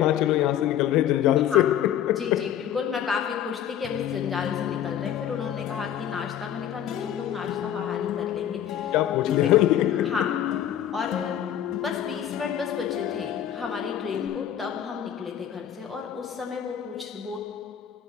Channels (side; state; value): right; quieter; 10.4 dB